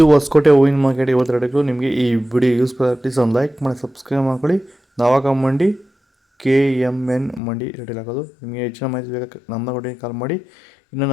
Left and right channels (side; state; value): right; drops out; at 7.4 s